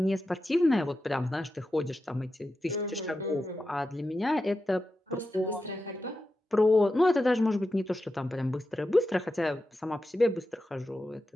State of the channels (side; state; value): both; normal; correlation 0.90